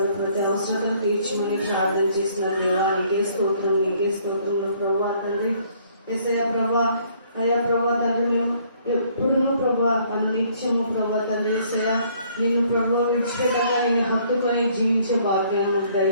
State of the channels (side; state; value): both; inverted; correlation -0.63